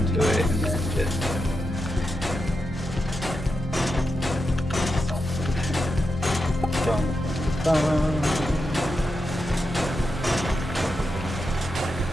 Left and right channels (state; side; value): normal; both; correlation 0.87